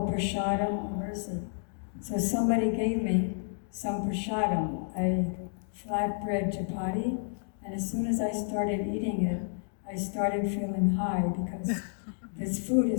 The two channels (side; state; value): right; silent; digital silence